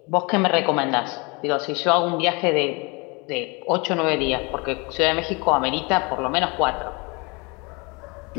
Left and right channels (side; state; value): right; quieter; 28.8 dB